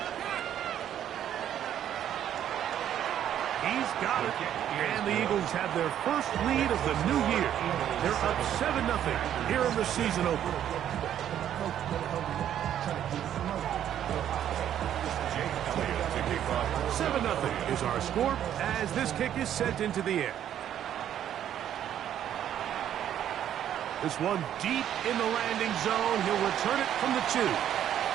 He's got it. And the Eagles have their 1st lead of the new year. They're up 7-0 here in the season opener. 7-0 is our score as this kick is sent into the air. This one deep in the landing zone. He'll return it from the 2.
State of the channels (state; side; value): quieter; left; 10.5 dB